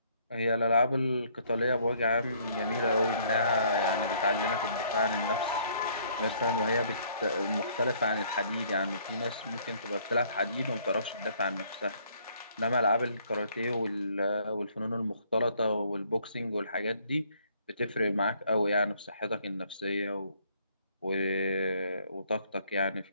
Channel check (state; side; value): inverted; both; correlation -0.63